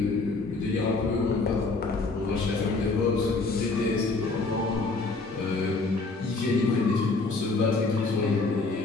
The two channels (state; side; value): quieter; right; 3.7 dB